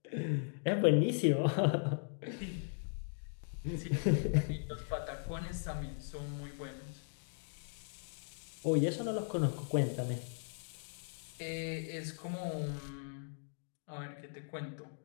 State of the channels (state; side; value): silent; right; digital silence